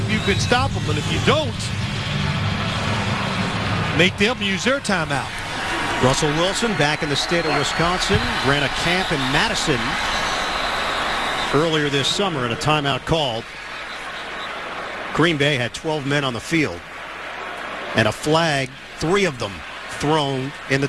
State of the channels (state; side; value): noise; left; hum, 27 dB below the sound